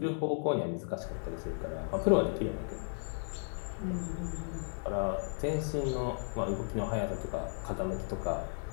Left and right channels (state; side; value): silent; right; 55 dB below the other